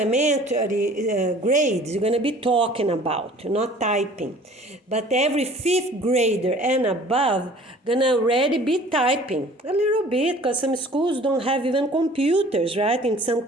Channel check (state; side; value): normal; both; correlation 0.49